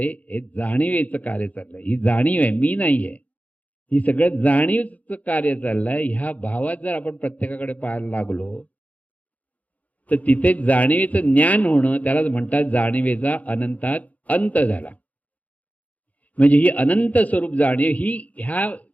हे जाणीवेचं कार्य चाललंय, ही जाणीव आहे, मी नाहीये, ही सगळं जाणीवचं कार्य चाललंय. ह्या भावात जर आपण प्रत्येकाकडे पाहायला लागलो तर तिथे जाणीवेचं ज्ञान होणं, त्यालाच म्हणतात जाणीवेचा अनंतात अंत झाला. म्हणजे ही अनंत स्वरूप जाणीव ही ह्या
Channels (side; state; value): right; late; 0.072 ms